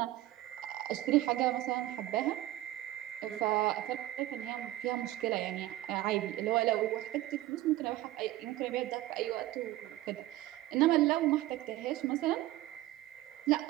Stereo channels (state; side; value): quieter; left; 15.6 dB